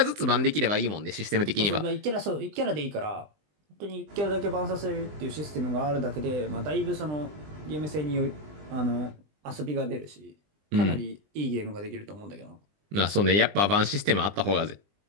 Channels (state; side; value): late; left; 20 ms